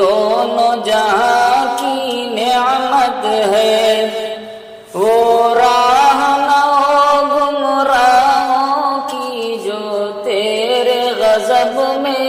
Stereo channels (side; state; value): both; identical; correlation 1.00